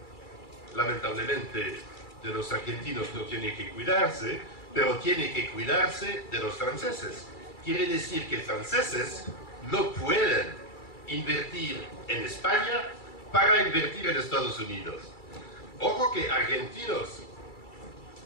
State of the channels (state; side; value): late; right; 2.3 ms